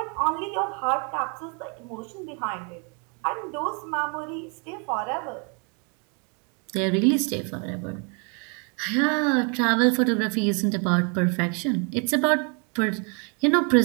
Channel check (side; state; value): left; quieter; 36.6 dB